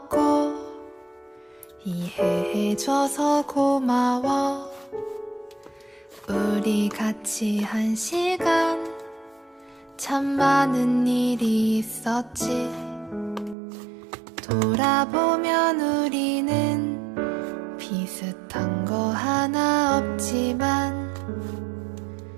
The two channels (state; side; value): drops out; left; at 13.6 s